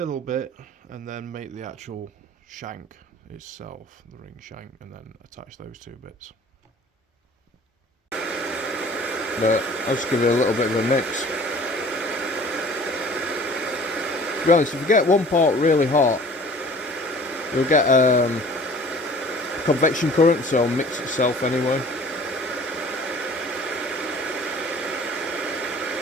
bit and then make the actual shank itself, the ring shank, and then attach those two bits. But I'll just give it a little bit of a mix. To be honest, if you get one part really hot, you'll get convection current, so it'll mix itself anyway.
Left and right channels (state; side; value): normal; both; correlation 0.48